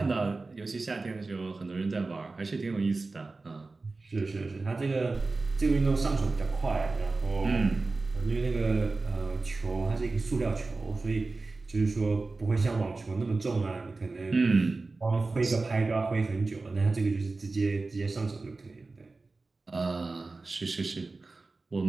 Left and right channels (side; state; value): left; quieter; 3.6 dB